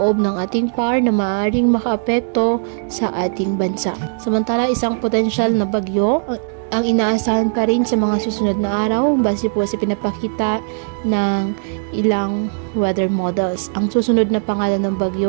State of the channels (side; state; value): left; silent; 60 dB below the other